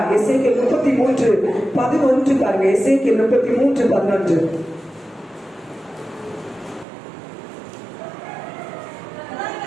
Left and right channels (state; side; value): drops out; left; at 6.9 s